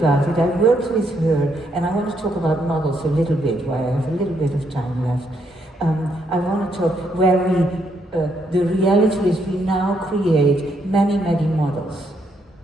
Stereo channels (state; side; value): normal; both; correlation 0.75